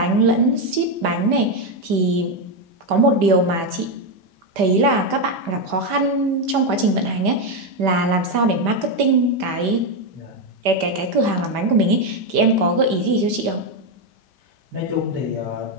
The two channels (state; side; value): late; left; 5.1 ms